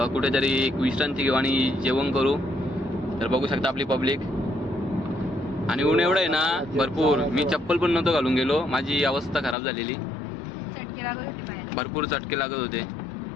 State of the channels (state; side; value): drops out; right; at 9.6 s